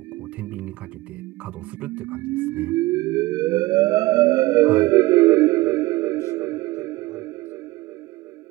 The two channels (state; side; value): quieter; left; 19.6 dB